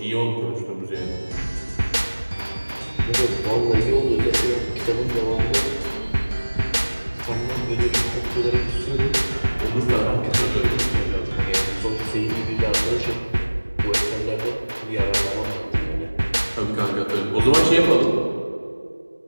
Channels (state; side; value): inverted; both; correlation -1.00